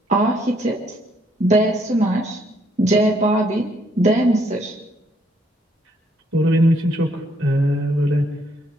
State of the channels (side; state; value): both; normal; correlation 0.70